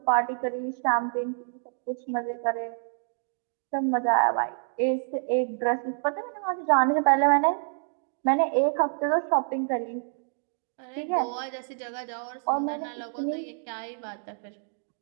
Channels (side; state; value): left; silent; digital silence